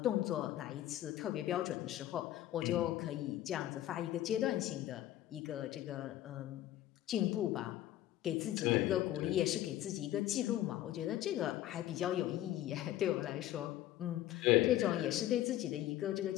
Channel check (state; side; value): quieter; right; 13.7 dB